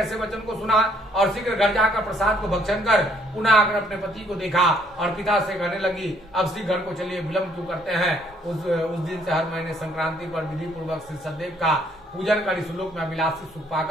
वचन को सुना और शीघ्र घर जाकर प्रसाद को भक्षण कर पुनः आकर अपने पति को देखा और पिता से कहने लगी, अब शीघ्र घर को चलिए, विलंब क्यों करते हैं। उस दिन से हर महीने संक्रांति पर विधि पूर्वक श्री सत्यदेव का पूजन कर इस लोक में अभिलाषी सुख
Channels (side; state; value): both; normal; correlation 0.66